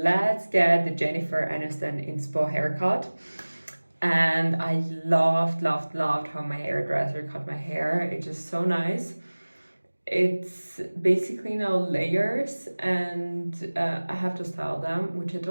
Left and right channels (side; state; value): both; inverted; correlation -1.00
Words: get the Jennifer Aniston inspo haircut. And I loved how my hairdresser cut my hair. It's just so nice. It's basically now layers, and I have to style them, which I